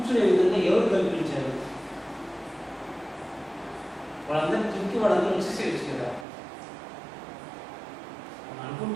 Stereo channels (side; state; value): left; drops out; at 6.2 s